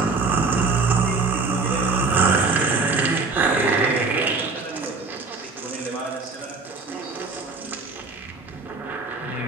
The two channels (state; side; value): quieter; left; 4.0 dB